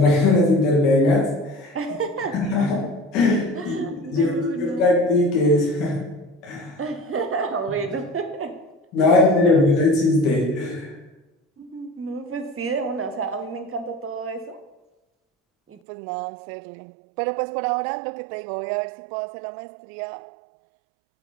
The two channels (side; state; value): left; drops out; at 15.8 s